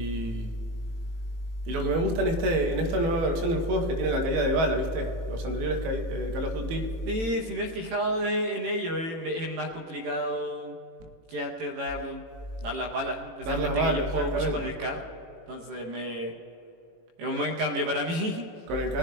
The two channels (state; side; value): late; left; 18 ms